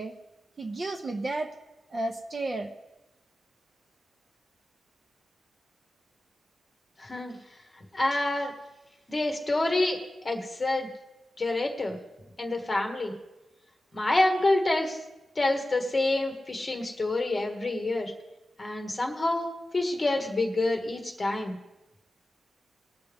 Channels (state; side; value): normal; both; correlation 0.95